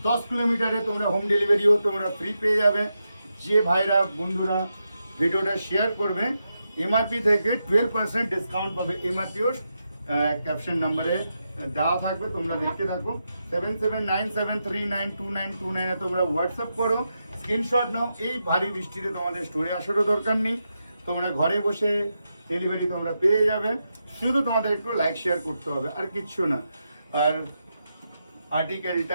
10 কিলোমিটারে তোমরা হোম ডেলিভারিও তোমরা ফ্রি পেয়ে যাবে। যে ভাইরা বন্ধুরা ভিডিওটা শেয়ার করবে এমআরপি থেকে 12% ডিসকাউন্ট পাবে। এমআরপিও ক্যাপশন নাম্বারে দেওয়া থাকবে, তোমরা দেখতে থাকো। 7797392929 তোমরা হোয়াটসঅ্যাপ করো, স্ক্রিনশট নাও। এই ভারী বৃষ্টিতে তোমাদের স্টোরে আসারও দরকার নেই, তোমরা ঘরে বসে ডেলিভারি তোমরা পেয়ে যাবে। শুধু তোমাদের একটু লাইক শেয়ার করতে হবে, আর কিচ্ছু না। আর আর্টিকেলটা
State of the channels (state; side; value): inverted; both; correlation -0.86